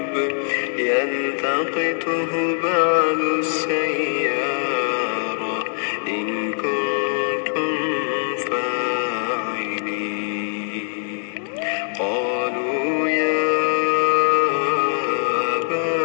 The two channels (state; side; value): silent; right; digital silence